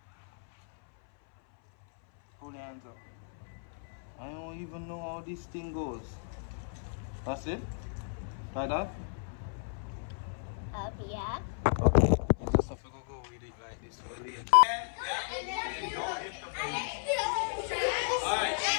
Hold your hands up. I don't even know how this thing goes. That's it? Like that? Yeah. Okay. You just have to go with it like this for later. Alright,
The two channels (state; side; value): silent; right; 55 dB below the other